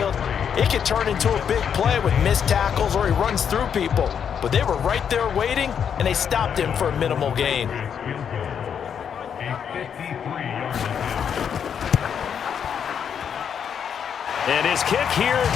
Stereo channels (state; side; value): quieter; right; 7.8 dB